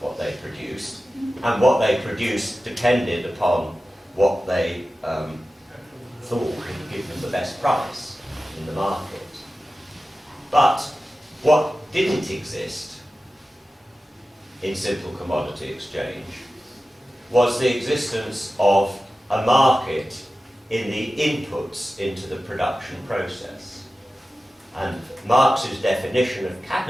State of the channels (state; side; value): normal; both; correlation 0.94